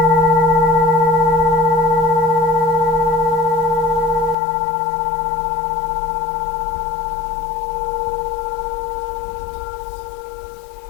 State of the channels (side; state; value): right; drops out; at 4.4 s